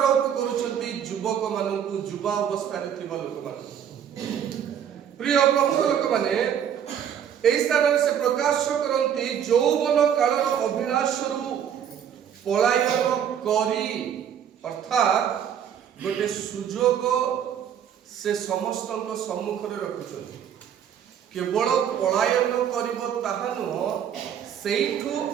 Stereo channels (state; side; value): quieter; left; 8.9 dB